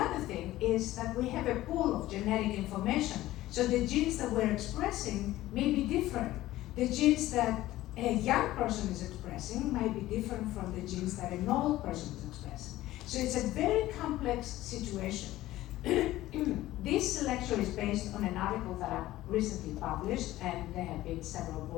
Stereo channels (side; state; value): right; quieter; 15.8 dB